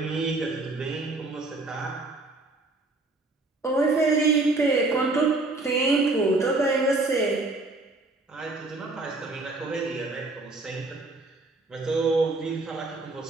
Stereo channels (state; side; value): quieter; left; 3.1 dB